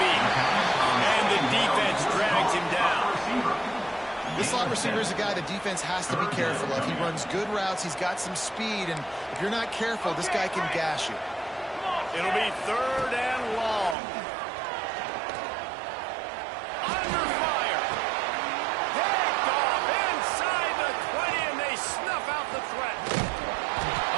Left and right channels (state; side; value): drops out; left; at 14.0 s